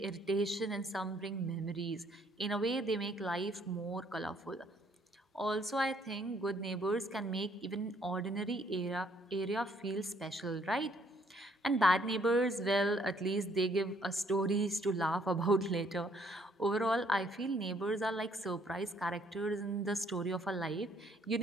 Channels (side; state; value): both; normal; correlation 0.66